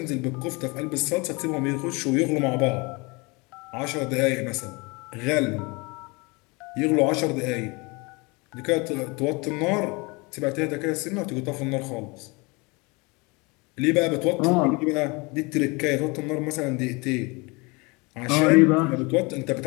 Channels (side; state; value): right; quieter; 27.3 dB